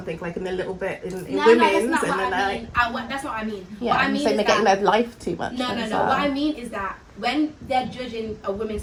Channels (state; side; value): identical; both; correlation 1.00